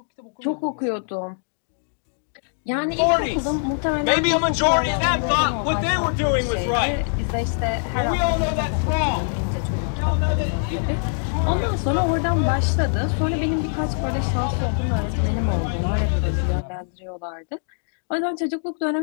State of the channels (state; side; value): silent; right; digital silence